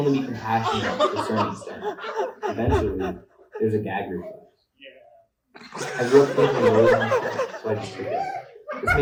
be compassionate to a certain extent. Eventually, there's a gag reflex. I grew up thinking low on myself, so I just took it. This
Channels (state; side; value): identical; both; correlation 1.00